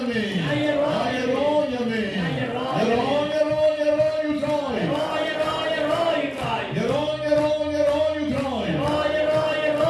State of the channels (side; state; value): both; identical; correlation 1.00